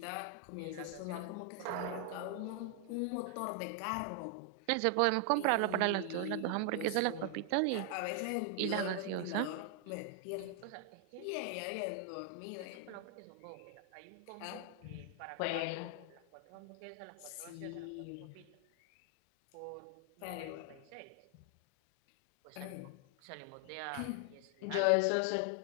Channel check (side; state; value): both; different; correlation 0.00